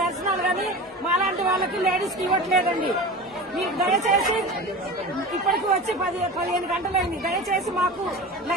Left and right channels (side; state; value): both; normal; correlation 0.31